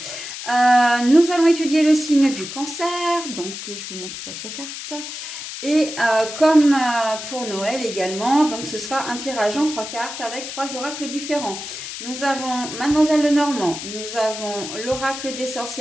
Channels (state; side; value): noise; left; hiss, 9 dB below the sound